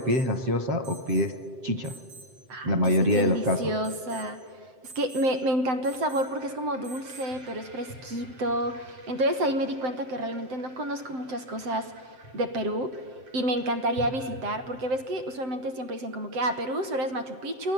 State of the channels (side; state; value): left; late; 7.7 ms